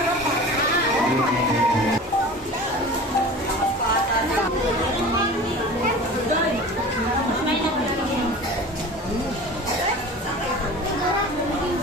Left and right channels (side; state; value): both; normal; correlation 0.37